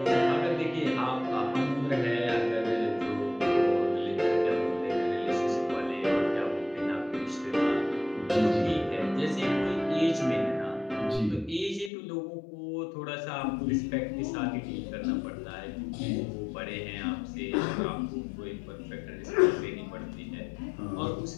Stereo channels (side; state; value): right; drops out; at 11.9 s